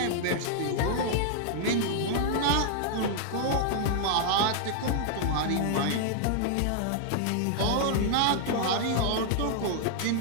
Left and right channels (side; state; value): both; different; correlation 0.00